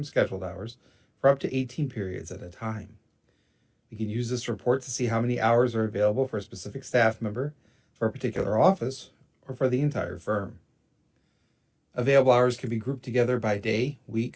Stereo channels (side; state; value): both; identical; correlation 1.00